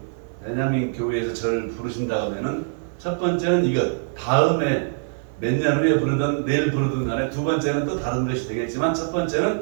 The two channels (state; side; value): silent; left; 56 dB below the other